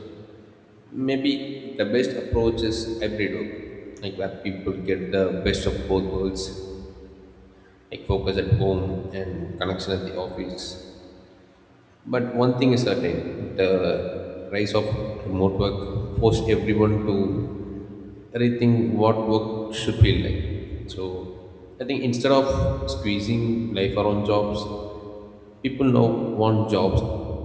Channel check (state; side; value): identical; both; correlation 1.00